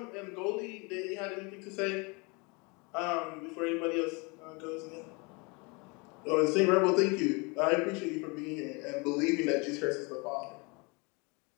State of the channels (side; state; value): right; quieter; 29.2 dB